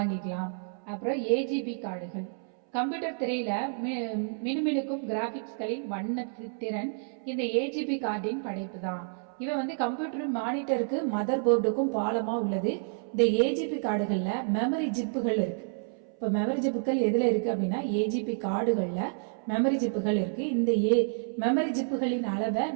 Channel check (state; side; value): silent; left; 58 dB below the other